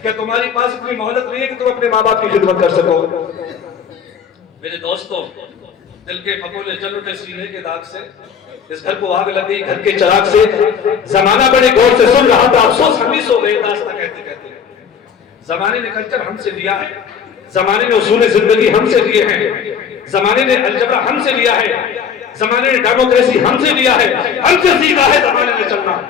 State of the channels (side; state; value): right; quieter; 7.1 dB